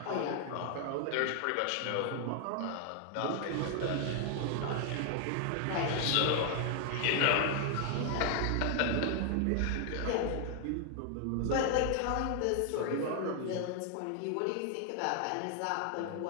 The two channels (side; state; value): both; different; correlation 0.00